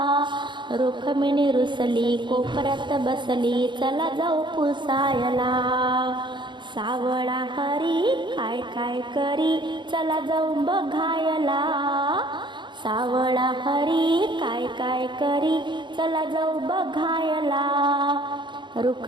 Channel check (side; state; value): left; late; 0.23 ms